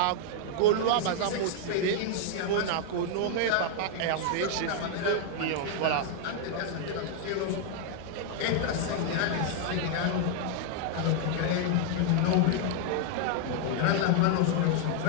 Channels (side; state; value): both; different; correlation 0.00